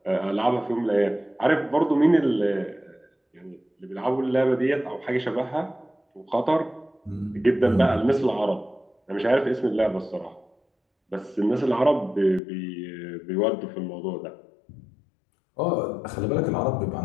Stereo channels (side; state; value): right; drops out; at 12.4 s